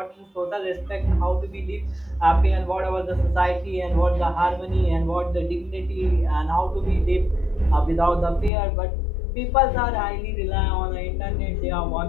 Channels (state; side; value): drops out; right; at 8.5 s